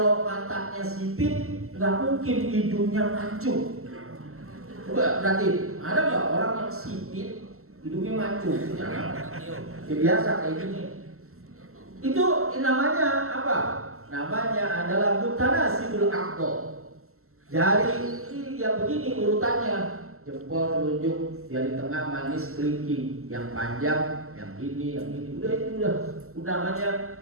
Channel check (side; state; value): left; late; 0.63 ms